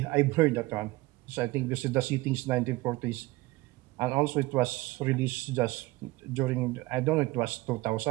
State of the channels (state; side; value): quieter; left; 20.4 dB